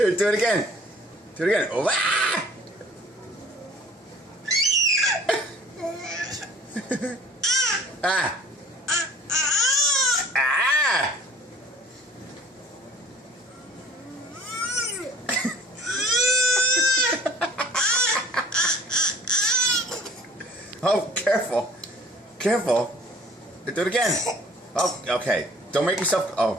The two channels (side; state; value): both; normal; correlation 0.50